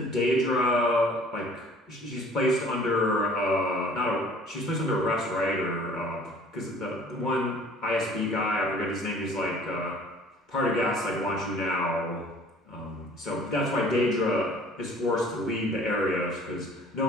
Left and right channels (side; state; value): both; normal; correlation 0.52